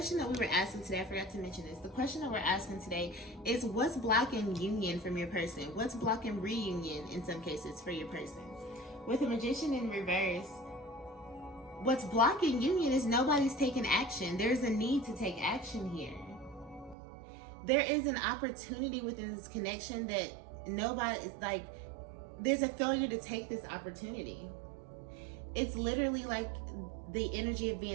that we were asking today, I forgot to mention this. The question that we're asking today is, what's blocking union from your person? What's blocking reunion in some cases for your person? With the Magician in reverse, what's blocking union is nobody's taking action. There's a need to take action here. There is an opportunity within this connection that nobody is like, there's a failure to take this opportunity. It's literally like the energy of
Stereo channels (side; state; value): left; drops out; at 16.9 s